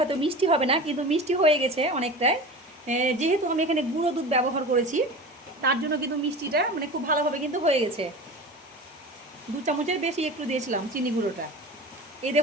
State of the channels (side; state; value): both; normal; correlation 0.33